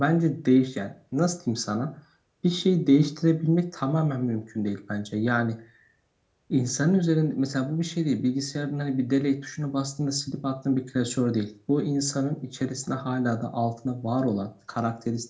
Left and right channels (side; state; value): both; identical; correlation 1.00